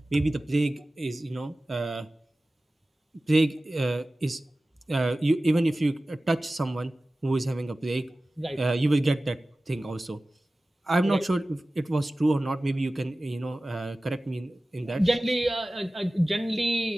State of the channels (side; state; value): both; normal; correlation 0.97